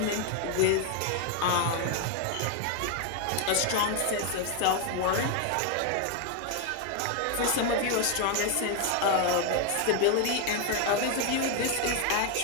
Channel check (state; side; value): different; both; correlation 0.01